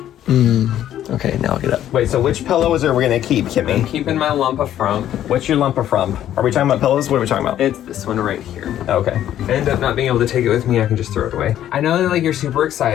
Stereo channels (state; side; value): quieter; right; 11.5 dB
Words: Okay, now I'll get up. Wait, so which pillow is there we're gonna keep, Kimmy? I'm keeping my lump of frump. What's your lump of frump? Are we talking about pillows? What are we talking about? It's this one right here. Okay. If I end up not being able to take it with me, I can just throw it away. I know that you're super